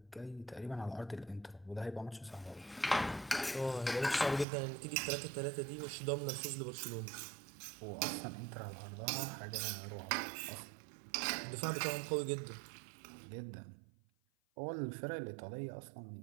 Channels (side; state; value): left; drops out; at 4.5 s